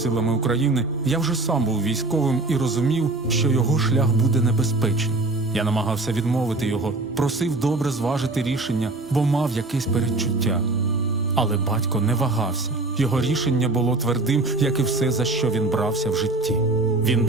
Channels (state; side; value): quieter; left; 3.0 dB